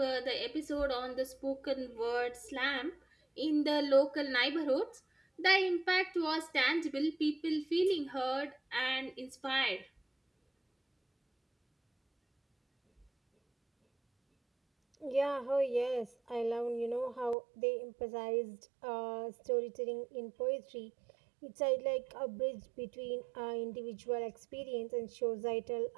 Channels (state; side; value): drops out; left; at 17.4 s